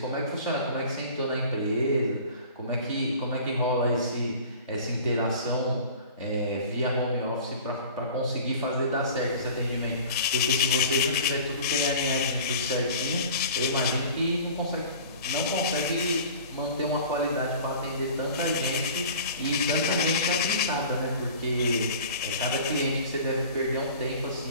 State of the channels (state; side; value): inverted; both; correlation -0.42